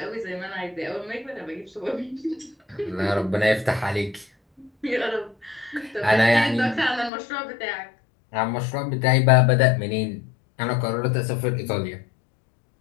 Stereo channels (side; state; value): right; drops out; at 7.1 s